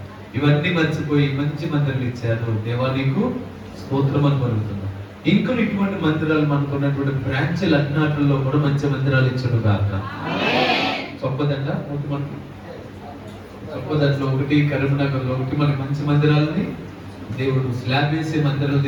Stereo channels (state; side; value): identical; both; correlation 1.00